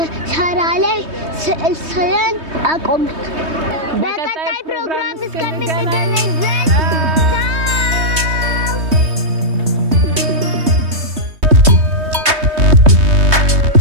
ሻራ ላይ ስዕል ስለን አቆምን። በቀጣይ ፕሮግራም እስከምንገናኝ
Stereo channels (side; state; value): left; late; 3.2 ms